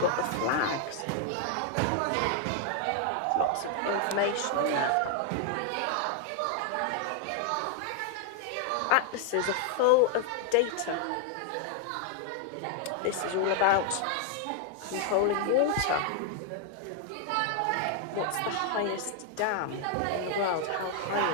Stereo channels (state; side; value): different; both; correlation 0.00